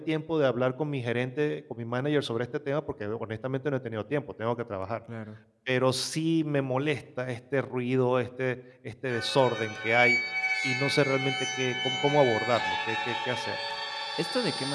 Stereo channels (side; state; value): both; identical; correlation 1.00